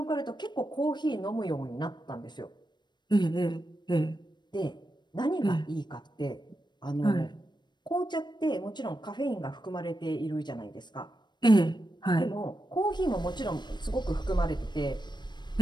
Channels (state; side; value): late; right; 0.21 ms